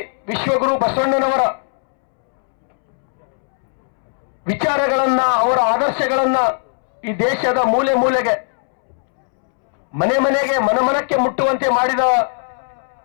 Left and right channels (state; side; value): silent; right; 67 dB below the other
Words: ವಿಶ್ವಗುರು ಬಸವಣ್ಣನವರ ವಿಚಾರಗಳನ್ನ, ಅವರ ಆದರ್ಶಗಳನ್ನ ಈ ದೇಶದ ಮೂಲೆ ಮೂಲೆಗೆ, ಮನೆ ಮನೆಗೆ, ಮನಮನಕ್ಕೆ ಮುಟ್ಟುವಂತೆ ಮಾಡಿದ